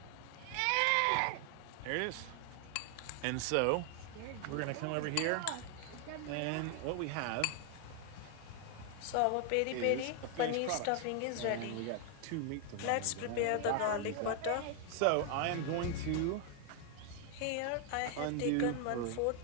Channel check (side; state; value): both; different; correlation 0.00